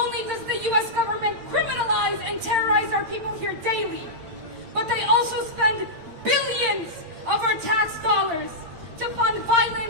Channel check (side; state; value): left; late; 8.8 ms